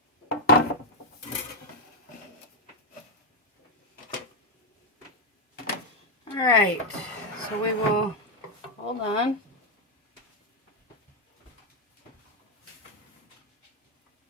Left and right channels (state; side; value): normal; both; correlation 0.02